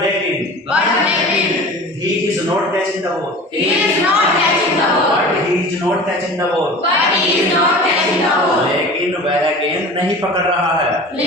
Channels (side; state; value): both; normal; correlation 0.38